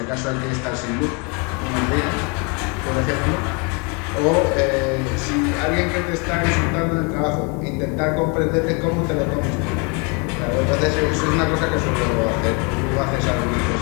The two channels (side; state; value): right; quieter; 32.7 dB